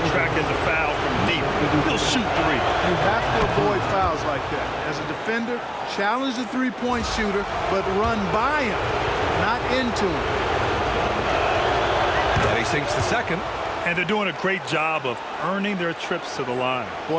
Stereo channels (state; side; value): identical; both; correlation 1.00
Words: attracting the foul from deep. He'll shoot 3. You have to avoid fouls like that. As a defender, challenge the three-point shooter, but run by him, not into him. And he sinks the second. And they're doing a great job of earning their trips to the line.